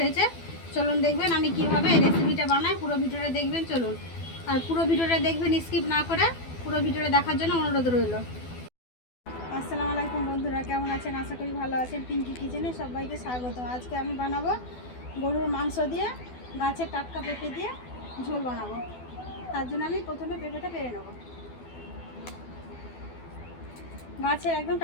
হয়েছে। চলুন দেখবেন আমি কিভাবে এই রেসিপিটা বানাই। পুরো ভিডিওটা দেখবেন চলুন। আর পুরো ভিডিওটা দেখবেন, স্কিপ না করে পুরো ভিডিওটা দেখার জন্য অনুরোধ রইল। আসসালামু আলাইকুম বন্ধুরা, কেমন আছেন? আশা করি ভালো আছেন। পিঙ্কি কিচেনে সবাইকে স্বাগত। আজকে আমি বানাবো গরুর মাংস দিয়ে গাছের টাটকা পেঁপে দিয়ে ঝোল বানাবো। তার জন্য আমি প্রথমে পেঁপেটা পেরে নেব। গাছের একদম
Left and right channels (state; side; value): late; right; 12 ms